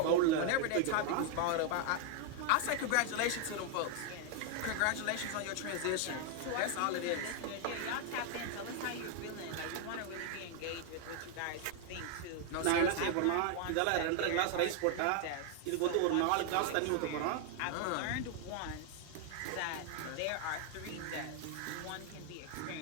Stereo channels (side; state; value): both; different; correlation 0.00